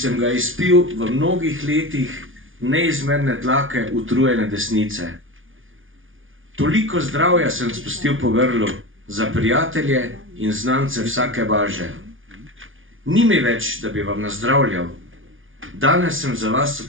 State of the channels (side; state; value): left; late; 0.58 ms